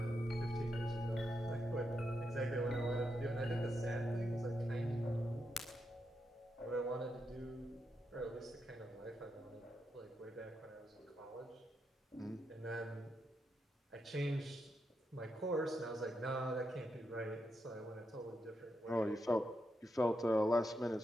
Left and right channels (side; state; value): both; normal; correlation 0.84